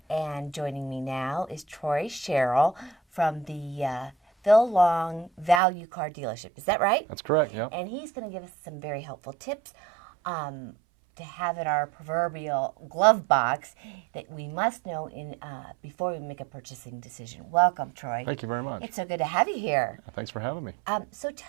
And joining me now is Troy Sherrill from the Phil Long Value Car Dealership. Is that right? That's correct, yeah. And he's going to give us some very helpful tips to have in our proverbial glove box that we must know before we make a purchasing decision. Welcome, Troy. Thank you very much. It's so good to have you here. Thanks for having me. So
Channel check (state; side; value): drops out; left; at 5.6 s